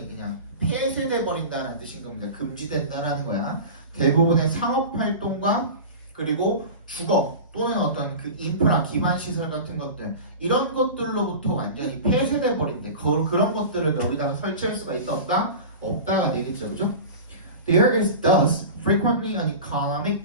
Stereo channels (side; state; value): both; inverted; correlation -0.32